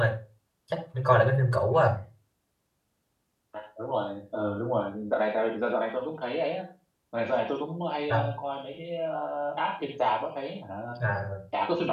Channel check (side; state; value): both; identical; correlation 1.00